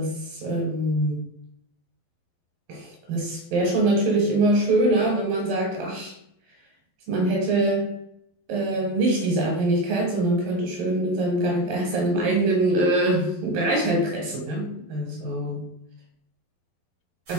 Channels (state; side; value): late; left; 11 ms